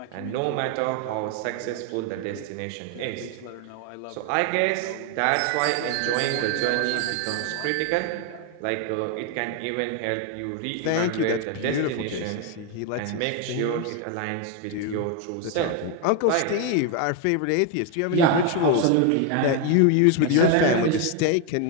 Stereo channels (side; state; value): both; different; correlation 0.01